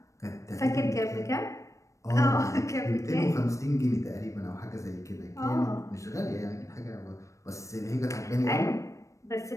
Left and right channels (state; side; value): late; right; 0.15 ms